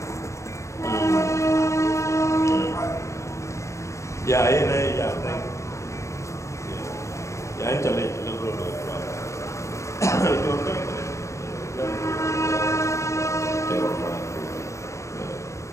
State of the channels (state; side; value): late; right; 0.14 ms